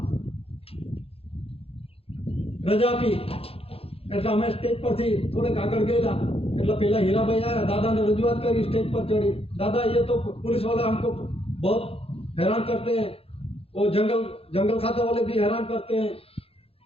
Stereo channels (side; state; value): right; late; 0.28 ms